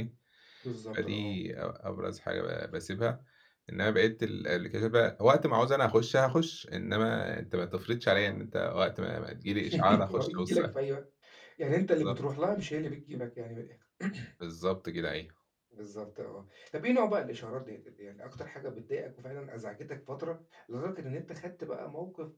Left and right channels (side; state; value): both; identical; correlation 1.00